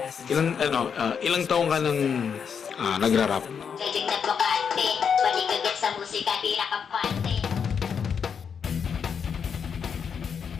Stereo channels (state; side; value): quieter; right; 6.9 dB